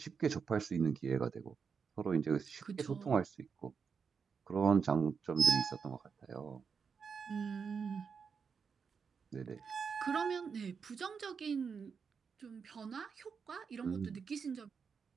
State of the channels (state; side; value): quieter; left; 6.0 dB